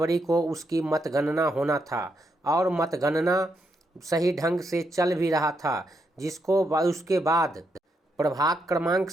को उसकी मतगणना होना था और मतगणना सही ढंग से चल भी रहा था, जिसको उसके बाद प्रभाग क्रमांक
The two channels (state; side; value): normal; both; correlation 0.80